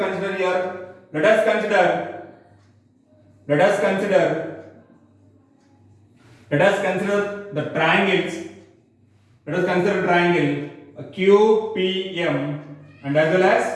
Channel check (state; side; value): identical; both; correlation 1.00